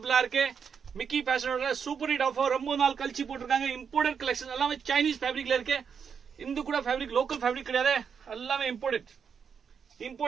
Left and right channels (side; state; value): left; quieter; 6.7 dB